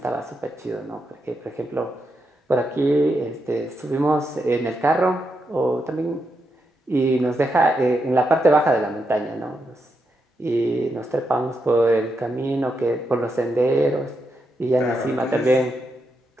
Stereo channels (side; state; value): both; normal; correlation 0.84